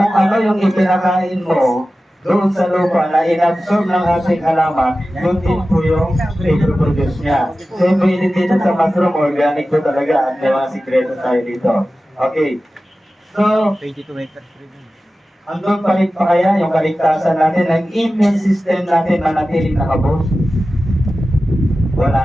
ano yung ipinakain mo doon sa lupa na inabsorb ng ating halaman, yun din po yung i-produce niya. Same way din dito sa mushroom, organic po talaga. At may mga sikreto tayo dito. Okay. So, andun pa rin pa kaya yung kaligtasan natin, ang immune system natin manatiling nakabos? Wala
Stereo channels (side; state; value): both; normal; correlation 0.95